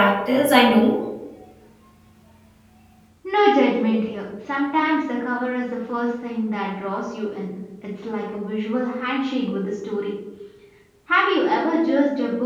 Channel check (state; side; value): identical; both; correlation 1.00